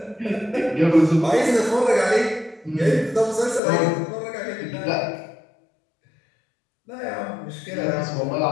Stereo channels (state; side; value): drops out; right; at 3.6 s